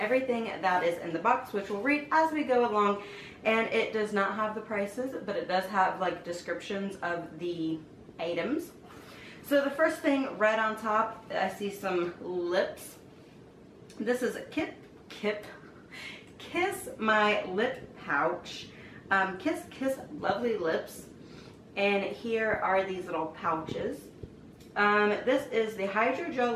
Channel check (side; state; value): both; identical; correlation 1.00